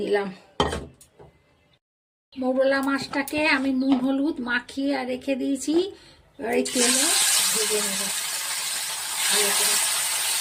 নিলাম। মৌরলা মাছটাকে আমি নুন হলুদ মাখিয়ে রেখে দিয়েছি, এবার এই তেলে ভেজে নেব ভালো করে।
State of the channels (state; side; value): identical; both; correlation 1.00